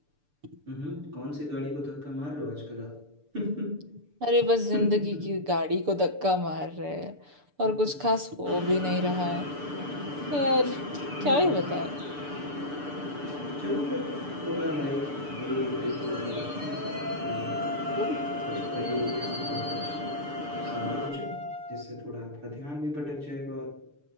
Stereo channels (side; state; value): left; late; 6.8 ms